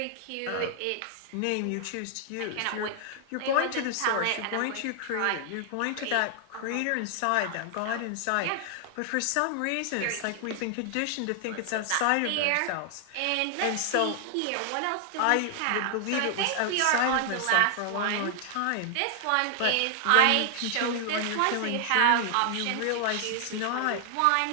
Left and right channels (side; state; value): both; different; correlation 0.00